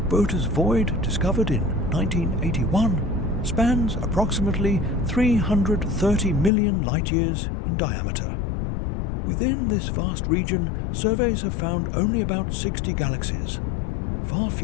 Botas void discovered in 1981, spans approximately 330 million light-years in diameter. Within this vast region, surveys have found only about 60 galaxies, far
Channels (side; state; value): right; drops out; at 6.5 s